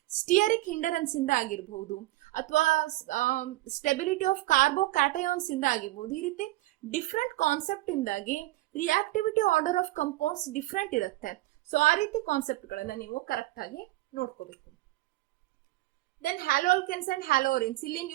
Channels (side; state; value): left; quieter; 18.2 dB